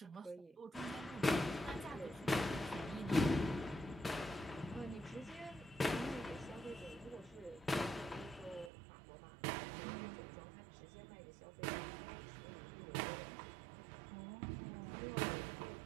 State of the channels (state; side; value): drops out; left; at 8.7 s